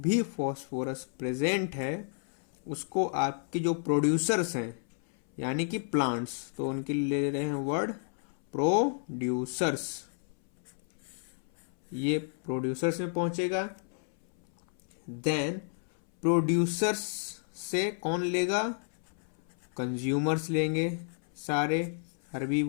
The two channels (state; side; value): silent; right; 57 dB below the other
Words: फॉस्फोरस प्रेजेंट है उसको आपके जो प्रोड्यूसर्स हैं यानी कि प्लांट्स, तो उनके लिए ले रहे हैं वर्ड प्रोड्यूसर्स। ये प्रोड्यूसर्स में पहुंचेगा। देन प्रोड्यूसर्स से कौन लेगा? कंज्यूमर्स लेंगे, सारे